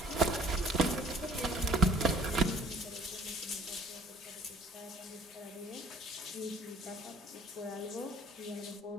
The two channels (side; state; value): both; normal; correlation 0.53